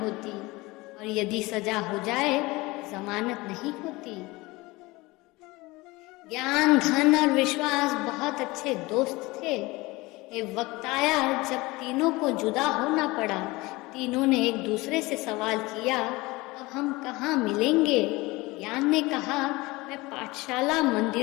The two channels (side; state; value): right; quieter; 22.0 dB